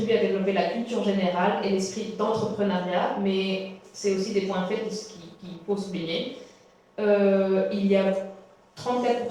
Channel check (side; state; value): both; identical; correlation 1.00